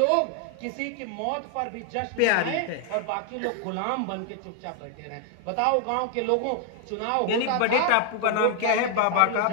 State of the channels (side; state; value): both; different; correlation 0.00